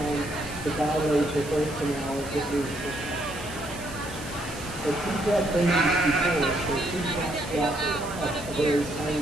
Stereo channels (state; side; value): noise; right; hiss, 15 dB below the sound